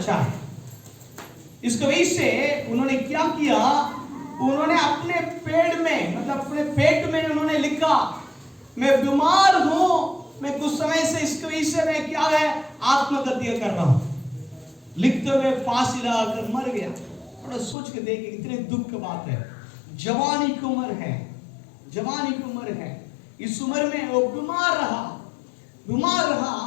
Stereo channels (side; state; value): right; drops out; at 17.8 s